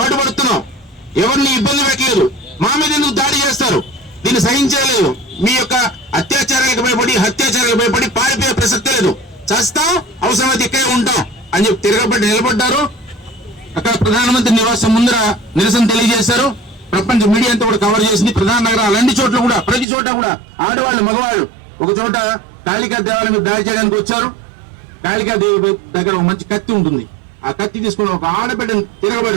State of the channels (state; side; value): drops out; left; at 19.9 s